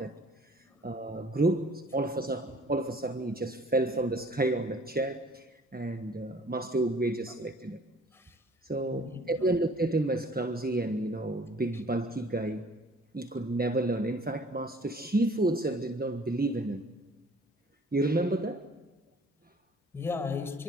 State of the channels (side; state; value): both; normal; correlation 0.53